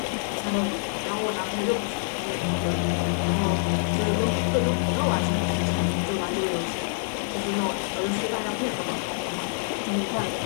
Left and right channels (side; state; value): right; silent; digital silence